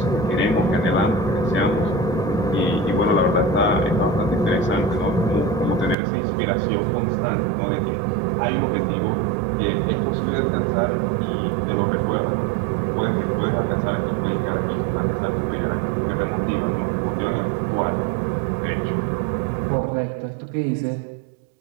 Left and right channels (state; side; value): drops out; left; at 6.0 s